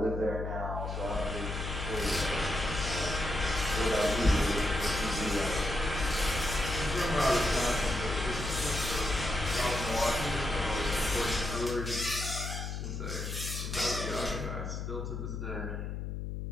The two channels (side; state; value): left; noise; hum, 4 dB below the sound